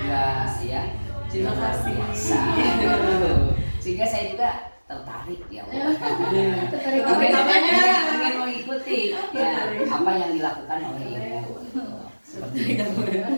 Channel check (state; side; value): inverted; both; correlation -1.00